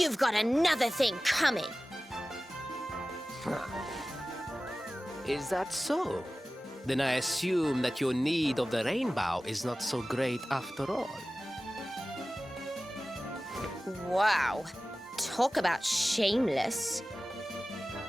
got another thing coming. Is that so? Then I assume that your need of the rainbow is not so great after all. Wow. Talk about shameless.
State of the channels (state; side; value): normal; both; correlation 0.96